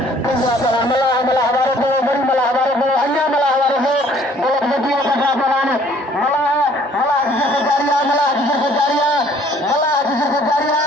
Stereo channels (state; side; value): normal; both; correlation 0.58